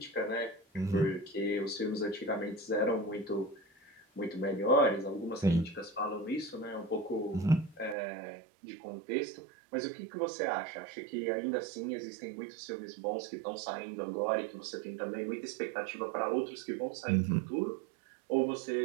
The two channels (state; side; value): drops out; left; at 8.0 s